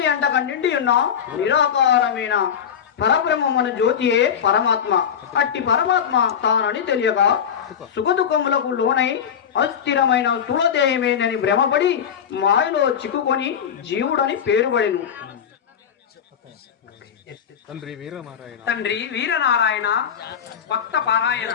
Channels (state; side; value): quieter; right; 8.1 dB